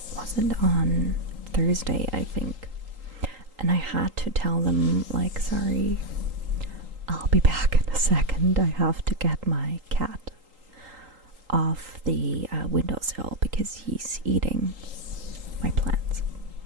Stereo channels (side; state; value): left; late; 3.8 ms